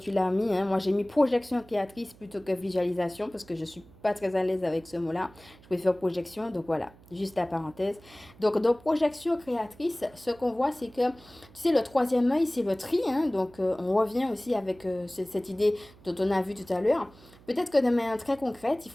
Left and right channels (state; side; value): noise; right; hum, 24 dB below the sound